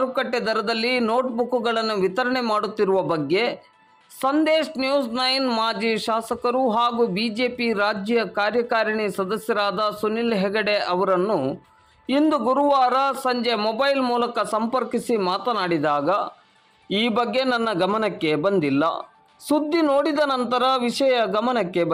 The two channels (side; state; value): both; identical; correlation 1.00